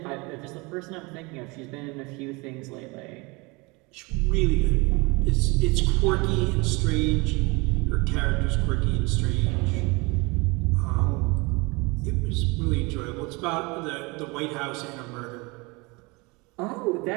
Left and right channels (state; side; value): quieter; left; 26.5 dB